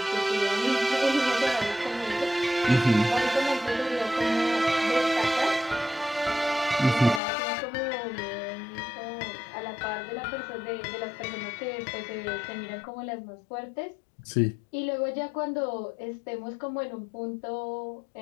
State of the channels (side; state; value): right; drops out; at 7.2 s